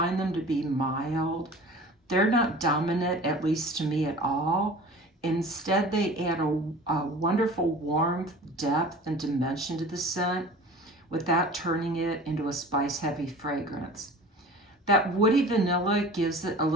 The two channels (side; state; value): both; normal; correlation 0.41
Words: them to be mild. They're not dominant, at least to me, at all. Instead, they add a wonderful warmth, depth, and dimension to the scent without turning it into a spice-heavy fragrance. That woody vanilla gives it a